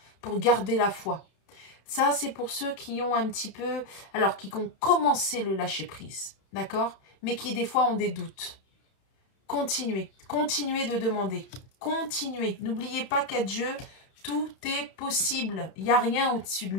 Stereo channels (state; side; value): late; right; 32 ms